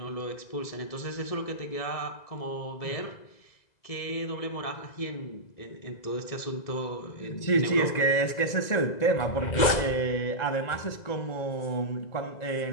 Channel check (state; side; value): late; right; 2.0 ms